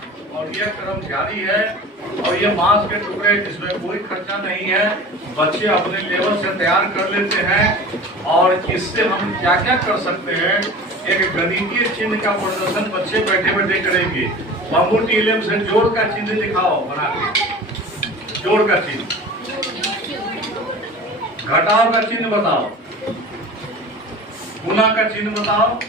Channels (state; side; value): normal; both; correlation 0.37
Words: और यह क्रम जारी है। और ये बांस के टुकड़े जिसमें कोई खर्चा नहीं है, बच्चे अपने लेवल से तैयार कर लेते हैं। और इससे हम क्या क्या कर सकते हैं, एक गणितीय चिन्ह का प्रदर्शन बच्चे बैठे बैठे करेंगे। बैम्बू TLM से जोड़ का चिन्ह दिखाओ बना के, जोड़ का चिन्ह, घटाव का चिन्ह बताओ, गुना का चिन्ह बताओ,